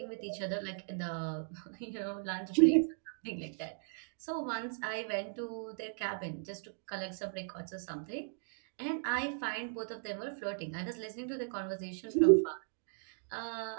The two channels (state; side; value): silent; left; digital silence